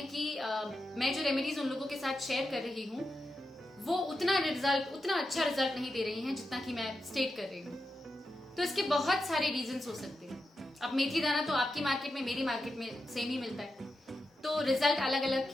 कि मैं जो रेमेडीज उन लोगों के साथ शेयर कर रही हूँ वो उतना अच्छा रिजल्ट नहीं दे रही हैं जितना कि मैं स्टेट कर रही हूँ। तो इसके बहुत सारे रीजंस हो सकते हैं। अब मेथी दाना तो आपकी मार्केट में मेरी मार्केट में सेम ही मिलता है, तो रिजल्ट अलग अलग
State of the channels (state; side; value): normal; both; correlation 0.89